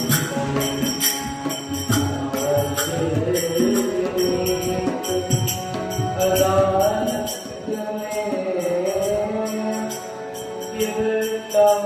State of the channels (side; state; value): both; identical; correlation 1.00